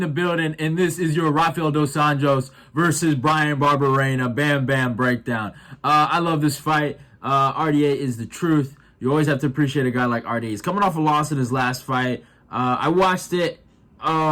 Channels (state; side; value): identical; both; correlation 1.00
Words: the building, and this is your Rafael dos Anjos versus Bryan Barberena Bam Bam breakdown. I love this fight. RDA is the truth. You always have to appreciate a guy like RDA. He's coming off a loss in his last fight. I watched it.